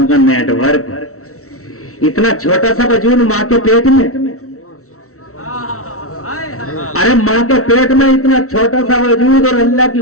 کا نیٹ ورک, اتنا چھوٹا سا وجود ماں کے پیٹ میں. ارے ماں کے پیٹ میں اتنا چھوٹا سا وجود اور اللہ کی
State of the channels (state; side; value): late; right; 0.63 ms